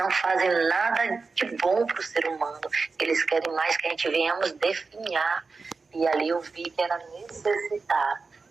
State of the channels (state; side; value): quieter; left; 4.3 dB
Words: fazem nada de bom para o ser humano, eles querem mais que a gente venhamos definhar. E ali eu vi que era necessário.